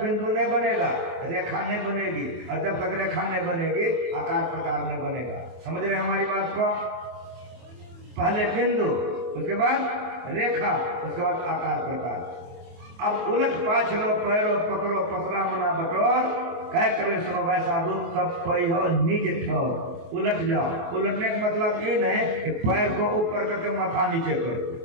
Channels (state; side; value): late; left; 24 ms